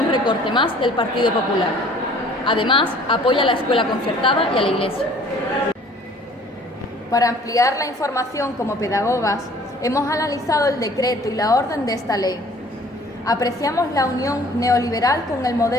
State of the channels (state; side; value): normal; both; correlation 0.53